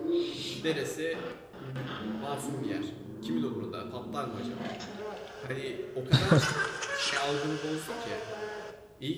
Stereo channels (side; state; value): both; identical; correlation 1.00